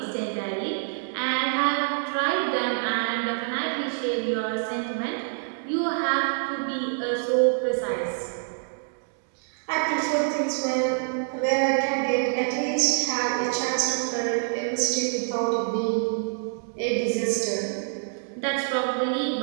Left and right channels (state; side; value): silent; left; digital silence